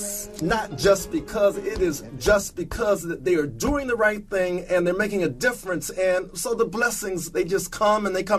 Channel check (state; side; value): identical; both; correlation 1.00